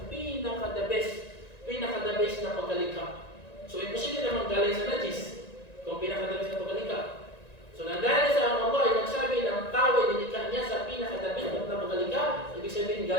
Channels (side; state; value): right; late; 1.9 ms